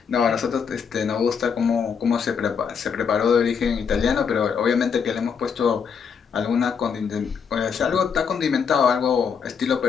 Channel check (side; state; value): right; quieter; 6.5 dB